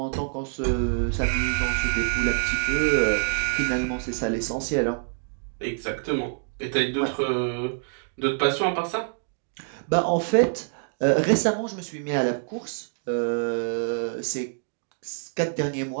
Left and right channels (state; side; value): silent; left; digital silence